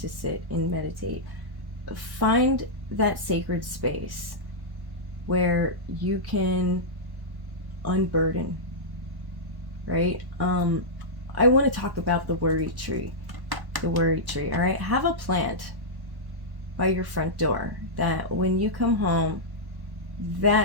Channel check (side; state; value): left; late; 1.1 ms